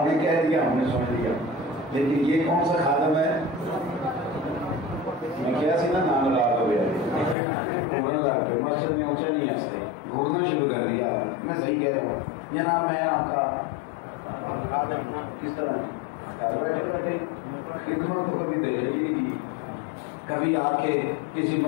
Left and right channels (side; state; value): right; drops out; at 7.4 s